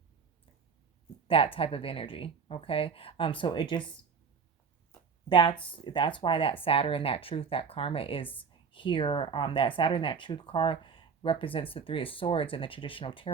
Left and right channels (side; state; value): left; quieter; 5.7 dB